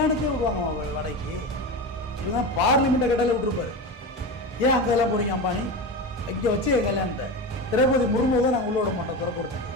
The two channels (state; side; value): normal; both; correlation 0.23